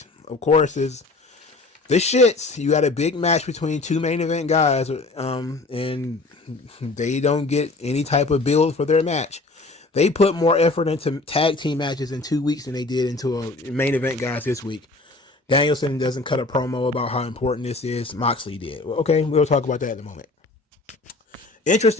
of course is the shits. You had a big match between two main event guys, and they don't get any type of build for their match. They put more effort into tag team matches in 2 weeks than they did into a main event guys this week. Danielson doesn't cut a promo about how important this is. Moxley did. Well, okay, we'll talk about that in a moment.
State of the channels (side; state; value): right; quieter; 3.3 dB